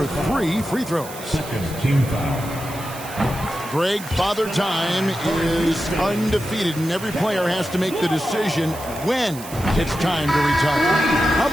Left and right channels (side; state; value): right; noise; hiss, 14 dB below the sound